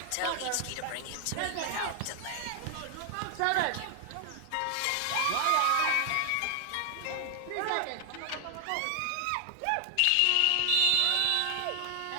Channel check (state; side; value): different; both; correlation 0.00